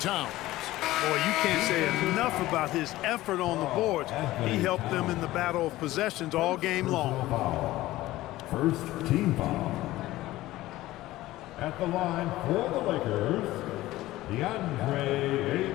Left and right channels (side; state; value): right; quieter; 16.7 dB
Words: Boy, you can't say enough about his effort on the boards. He helped them in the battle of possessions all game long. First team foul. At the line for the Lakers, DeAndre